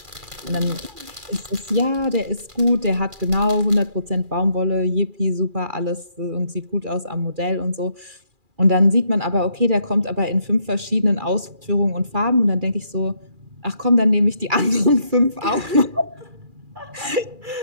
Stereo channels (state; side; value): late; left; 2.4 ms